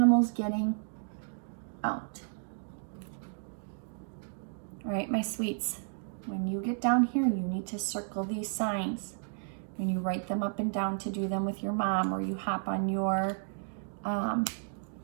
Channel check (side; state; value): left; silent; digital silence